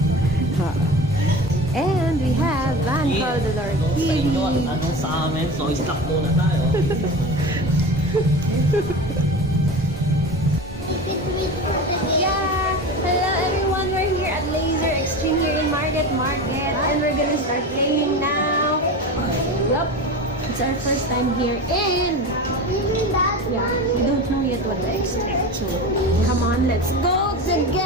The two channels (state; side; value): normal; both; correlation 0.30